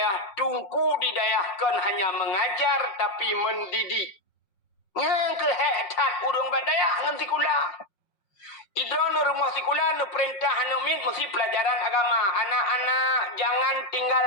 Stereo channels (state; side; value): late; right; 5.5 ms